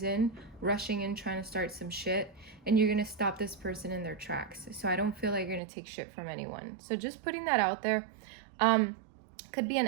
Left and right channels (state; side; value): drops out; left; at 5.6 s